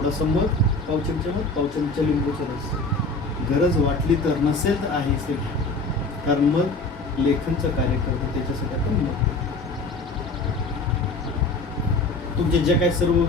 मध, पाव चमचा मध, पाव चमचा लिंबूचा रस. गरज वाटली तर, नसेल तर आहेच ते, कारण मध लेखनचं कार्य करतो, त्याच्यासाठी आपण मध. तुमचे जे काही सर्व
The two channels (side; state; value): right; quieter; 3.3 dB